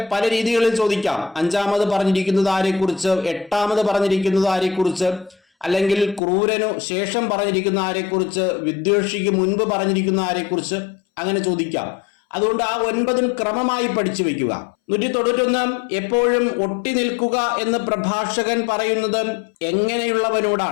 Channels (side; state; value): right; drops out; at 6.2 s